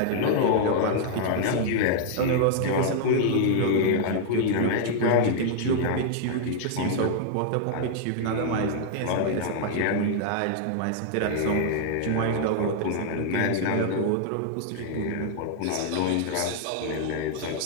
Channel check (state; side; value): different; both; correlation -0.01